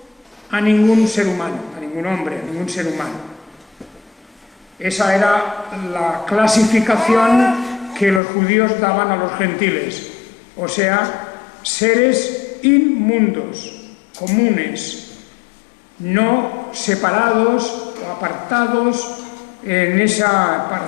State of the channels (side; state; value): right; drops out; at 8.2 s